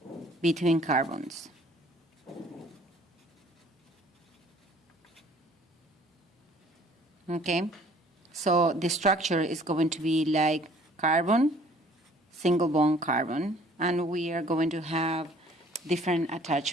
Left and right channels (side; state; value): both; normal; correlation 0.55